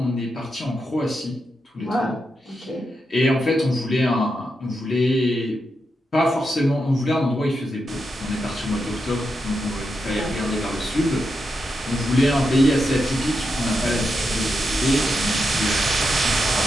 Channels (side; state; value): both; normal; correlation 0.86